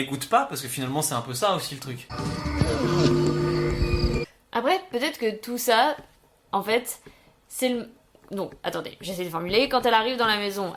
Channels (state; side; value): identical; both; correlation 1.00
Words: goûte pas, parce que finalement, c'est un peu ça aussi le truc. Après, peut-être que tout ça, en fait, c'est le... Donc, attendez, j'essaie de formuler. Quand elle arrive dans la maison,